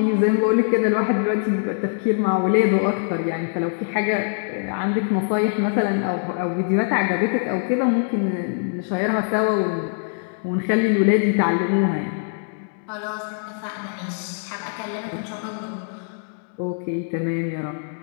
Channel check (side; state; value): right; silent; digital silence